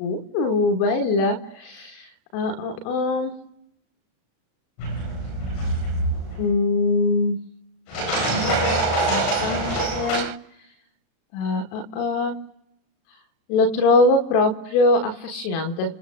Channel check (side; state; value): right; late; 36 ms